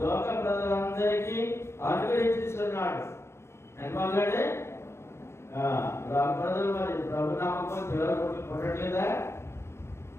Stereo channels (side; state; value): right; late; 0.13 ms